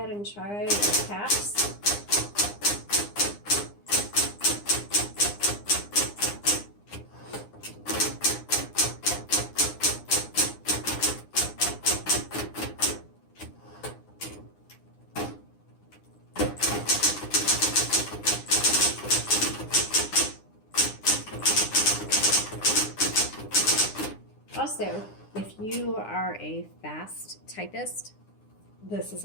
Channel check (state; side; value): late; right; 9.8 ms